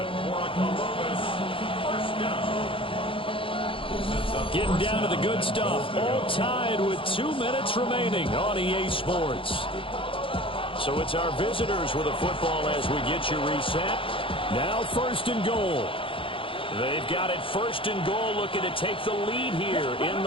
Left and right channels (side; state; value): right; late; 0.26 ms